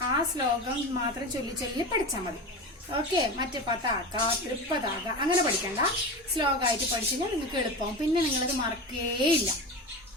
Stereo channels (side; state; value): both; normal; correlation 0.25